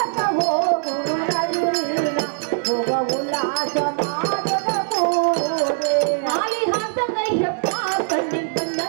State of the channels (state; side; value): silent; left; 65 dB below the other